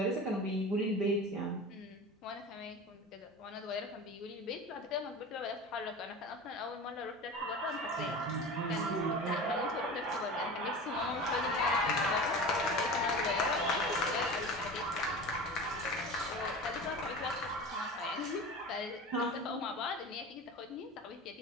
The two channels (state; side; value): normal; both; correlation 0.33